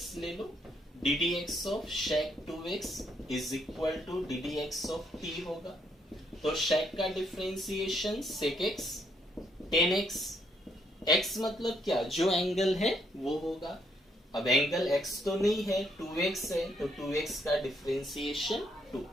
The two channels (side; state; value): both; normal; correlation 0.72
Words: ले लो, ddx of sec 2x is equal to ddx of t होगा। तो sec का differentiation sec x tan x, x मतलब क्या, जो एंगल है वो होगा। अब एंगल x तो नहीं है, 2x है, तो 2x का डिफरेंशिएशन 2।